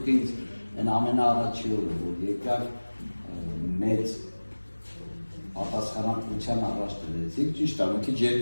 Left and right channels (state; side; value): inverted; both; correlation -1.00